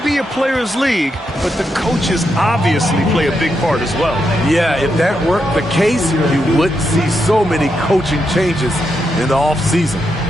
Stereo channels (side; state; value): both; normal; correlation 0.83